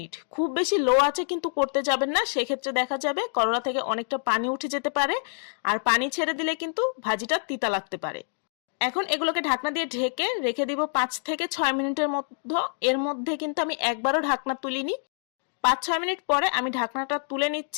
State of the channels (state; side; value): silent; right; digital silence